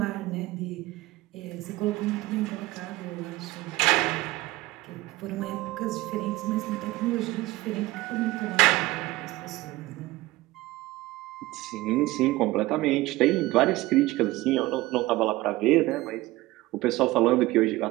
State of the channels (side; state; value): left; quieter; 18.8 dB